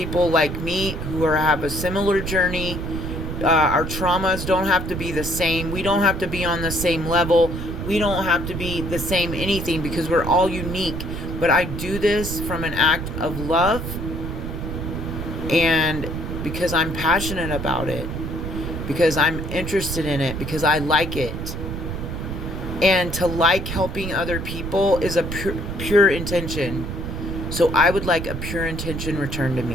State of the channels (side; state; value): right; noise; rumble, 5 dB below the sound